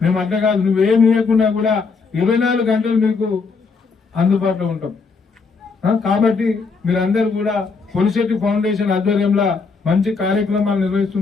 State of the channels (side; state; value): right; quieter; 4.6 dB